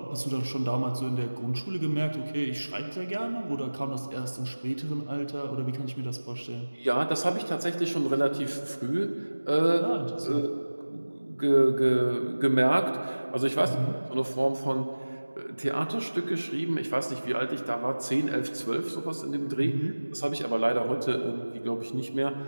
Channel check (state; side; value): inverted; both; correlation -1.00